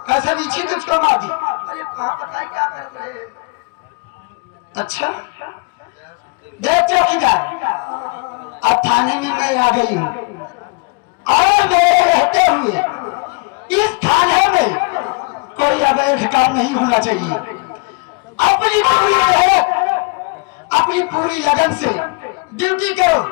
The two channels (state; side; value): quieter; right; 31.4 dB